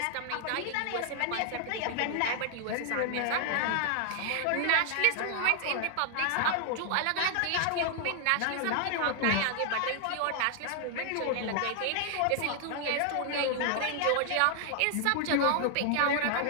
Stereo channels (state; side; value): different; both; correlation 0.00